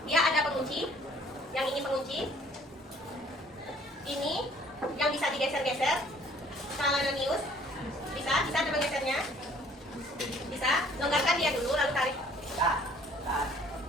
dia ada pengunci. Yang ini pengunci. Ini yang bisa digeser-geser. Scalarius. Bisa coba gesernya. Bisa. Longgarkan dia dulu lalu tarik.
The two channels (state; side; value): normal; both; correlation 0.57